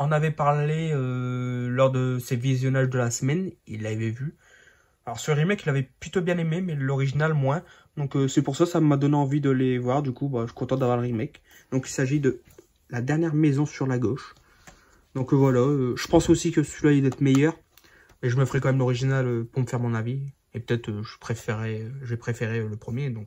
avait parlé lors de ses visionnages de la semaine, il l'avait vu. Alors ce remake, il avait plutôt bien aimé, mais l'original moins. Donc c'est pour ça que ça m'a donné envie de les voir. Du coup, bah, je suis content d'avoir le remake. Donc il s'agit de La dernière maison sur la gauche. Donc voilà, je pense aussi que celui-là il doit être meilleur. Mais je me ferai quand même l'original pour me faire mon avis. Et peut-être j'ai préféré le premier,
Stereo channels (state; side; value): identical; both; correlation 1.00